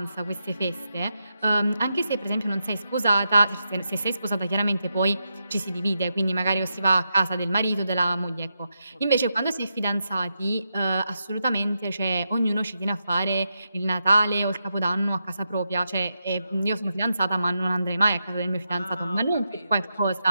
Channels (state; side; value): inverted; both; correlation -0.86